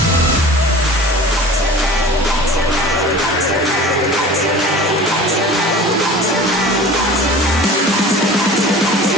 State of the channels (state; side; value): normal; both; correlation 0.41